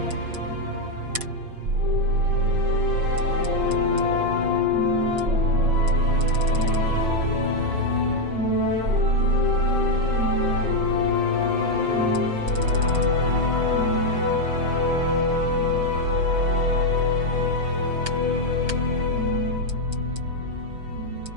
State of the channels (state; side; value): late; left; 5.7 ms